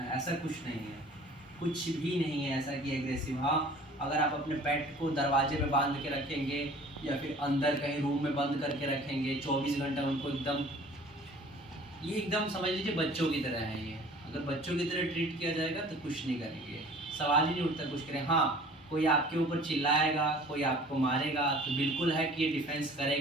ऐसा कुछ नहीं है, कुछ भी नहीं है ऐसा कि एग्रेसिव। हाँ, अगर आप अपने पेट को दरवाजे पे बांध के रखेंगे या फिर अंदर कहीं रूम में बंद करके रखेंगे 24 घंटा उनको एकदम समझ लीजिए बच्चों की तरह है ये। अगर बच्चों की तरह ट्रीट किया जाएगा तो कुछ नहीं करेंगे, सवाल ही नहीं उठता कुछ करें। हाँ, कोई आपके ऊपर चिल्लाएगा, कोई आपको मारेगा तो बिल्कुल है कि ये डिफेंस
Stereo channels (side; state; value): both; normal; correlation 0.48